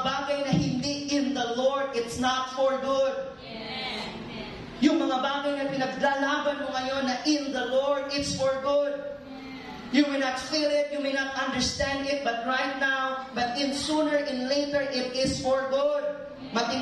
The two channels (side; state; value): both; identical; correlation 1.00